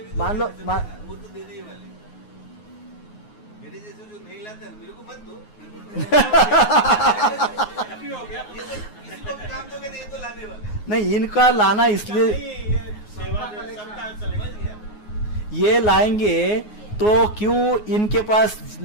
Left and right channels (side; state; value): right; late; 9.5 ms